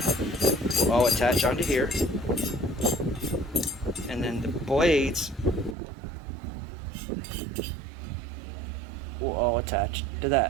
will all attach onto here, and then the blades will all attach to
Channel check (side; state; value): left; drops out; at 5.8 s